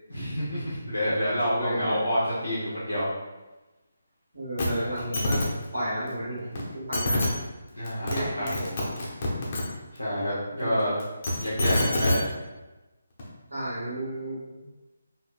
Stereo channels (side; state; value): both; inverted; correlation -0.85